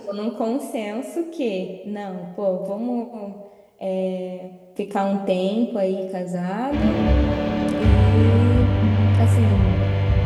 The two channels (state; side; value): identical; both; correlation 1.00